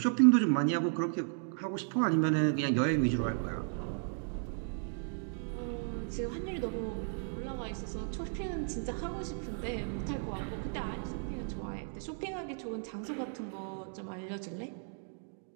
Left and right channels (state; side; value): silent; left; 55 dB below the other